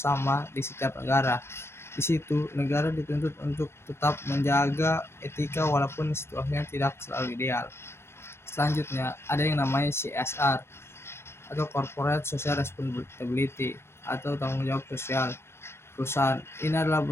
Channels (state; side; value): late; right; 0.12 ms